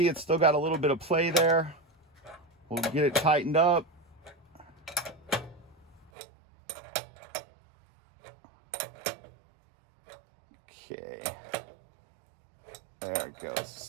it's still got a little bit of play there. We'll get it tightened up. Okay. There it goes.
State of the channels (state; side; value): drops out; left; at 6.1 s